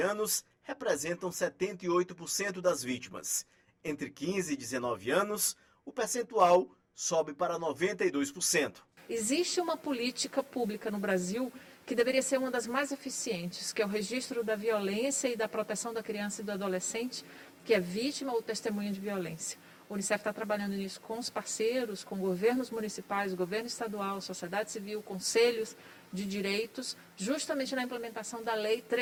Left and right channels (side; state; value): both; identical; correlation 1.00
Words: representam 78% das vítimas. Entre 15 e 19 anos, o percentual sobe para 92%. Existe uma política pública no Brasil que deveria ser uma das mais eficientes, que é o registro da violência e da proteção da criança e do adolescente, que é vítima ou testemunha de violência. O Unicef está trabalhando nisso com os parceiros, com governos municipais, governo estadual, sociedade civil, conselhos de direitos, justamente na implementação da Lei